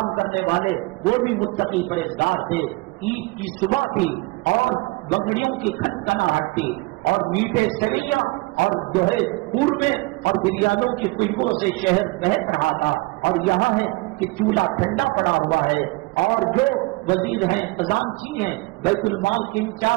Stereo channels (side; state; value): left; quieter; 23.8 dB